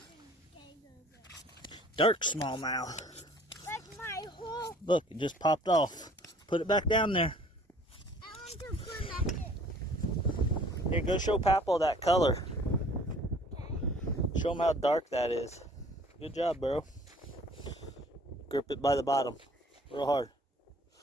Dark smallmouth. Like my whole. Look, it just popped off. Put it back down there. I want to put that in. Here, go show Papaw that color. Show him how dark that is. Good job, bro. Grip it by the bottom. Real hard.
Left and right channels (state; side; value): normal; both; correlation 0.53